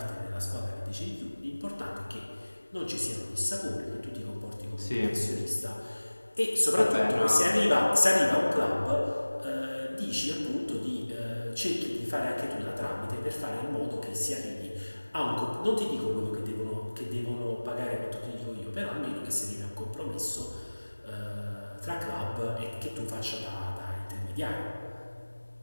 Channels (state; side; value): inverted; both; correlation -1.00